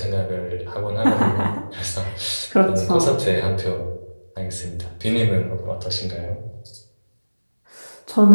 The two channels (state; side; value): inverted; both; correlation -1.00